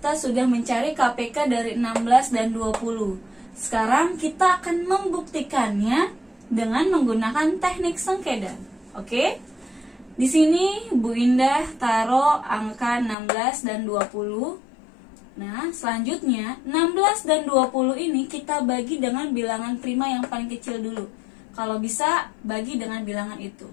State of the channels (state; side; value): drops out; right; at 13.2 s